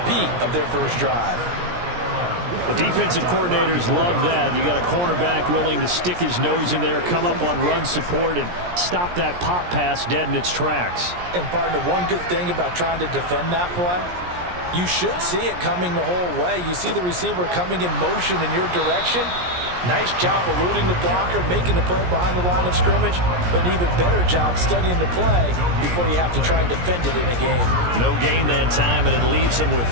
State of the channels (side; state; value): left; late; 17 ms